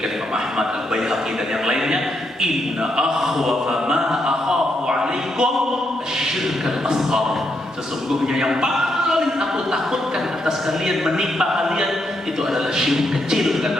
Imam Ahmad, Al-Baihaqi dan yang lainnya, inna akhwafa ma akhafu alaikum asyirk al-asghar. Sesungguhnya yang paling aku takutkan atas kalian, menimpa kalian, itu adalah syirik kecil,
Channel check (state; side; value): normal; both; correlation 0.79